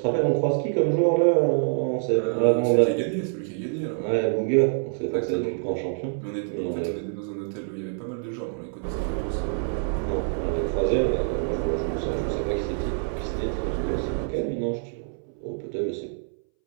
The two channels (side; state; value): left; silent; 61 dB below the other